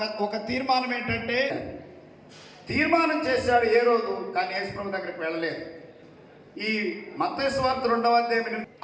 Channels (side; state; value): both; identical; correlation 1.00